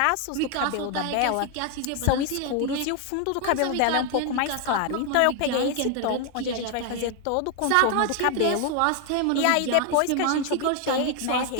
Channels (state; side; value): different; both; correlation 0.01